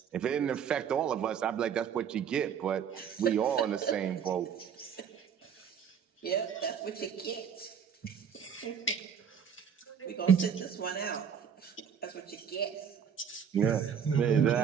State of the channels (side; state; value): left; quieter; 7.6 dB